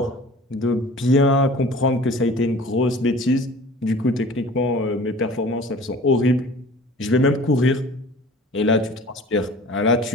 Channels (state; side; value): normal; both; correlation 0.44